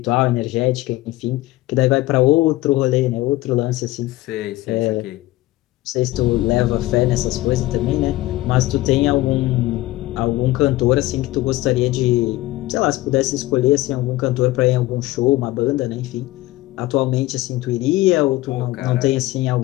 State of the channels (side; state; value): right; quieter; 17.8 dB